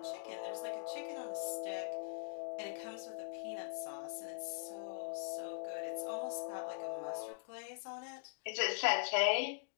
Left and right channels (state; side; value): silent; right; digital silence